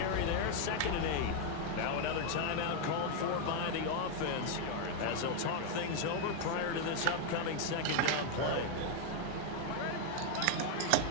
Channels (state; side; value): different; both; correlation 0.01